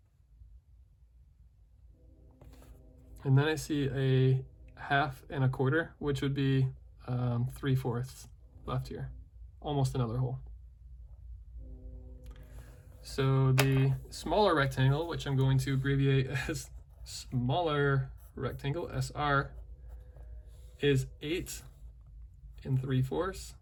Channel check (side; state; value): both; identical; correlation 1.00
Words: And then I see a 1/2 and a 1/4, which would be 3/4 left here. Almost another hole. So the smaller rectangle, which I'm going to abbreviate as smaller rectangle, SR, is 8 3/4.